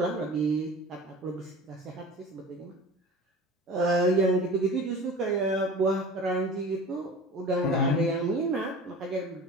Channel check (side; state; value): both; normal; correlation 0.38